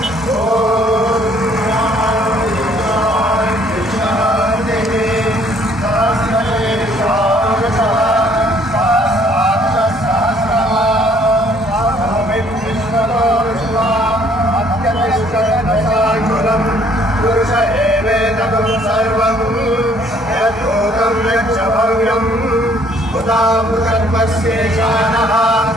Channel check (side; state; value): both; normal; correlation 0.61